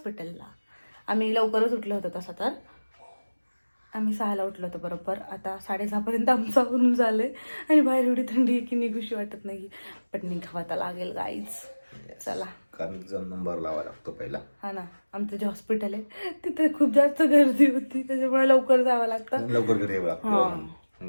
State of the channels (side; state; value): both; inverted; correlation -1.00